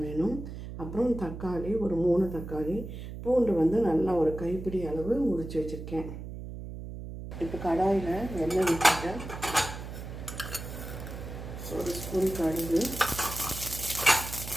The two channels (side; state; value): right; noise; hum, 9 dB below the sound